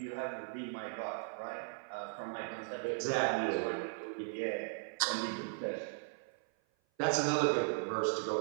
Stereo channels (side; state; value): left; silent; 53 dB below the other